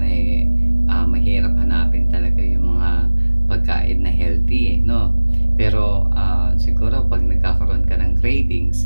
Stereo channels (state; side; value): inverted; both; correlation -1.00